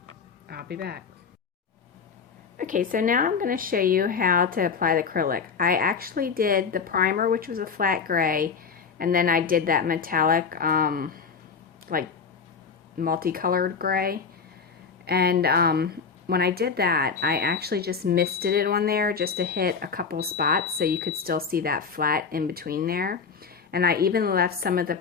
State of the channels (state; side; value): quieter; right; 5.6 dB